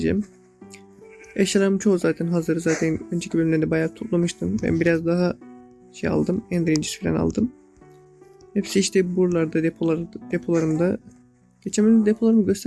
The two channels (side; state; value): both; identical; correlation 1.00